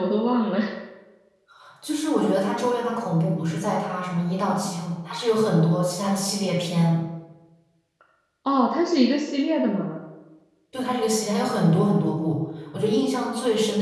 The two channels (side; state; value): both; identical; correlation 1.00